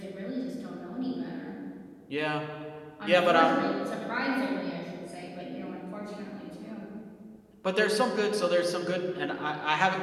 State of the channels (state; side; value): identical; both; correlation 1.00